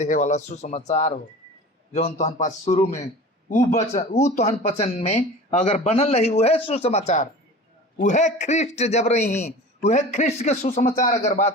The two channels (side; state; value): both; normal; correlation 0.37